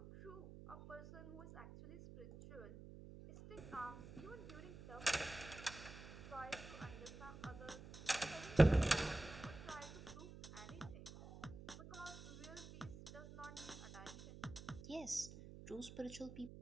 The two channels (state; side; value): noise; right; hum, 13 dB below the sound